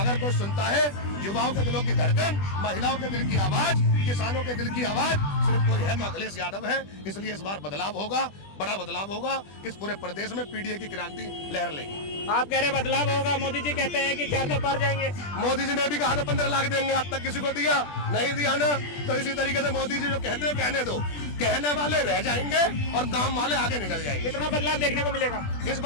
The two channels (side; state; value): right; late; 20 ms